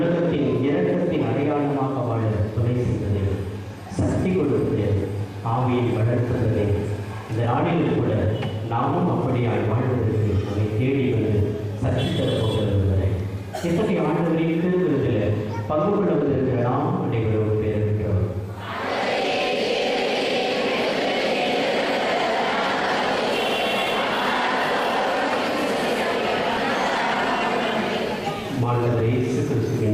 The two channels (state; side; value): identical; both; correlation 1.00